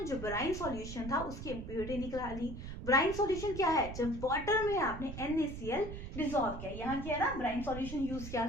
जो ब्राइन सॉल्यूशन था उसकी इम्प्योरिटी निकाली। ब्राइन सॉल्यूशन क्या है, जब वाटर में आपने NaCl डिसॉल्व किया, यहाँ किया ना ब्राइन सॉल्यूशन यूज किया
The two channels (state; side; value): noise; right; rumble, 9 dB below the sound